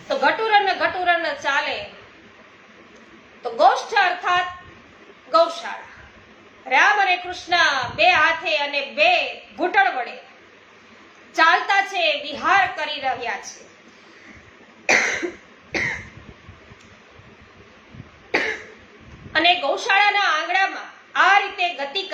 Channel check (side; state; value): both; identical; correlation 1.00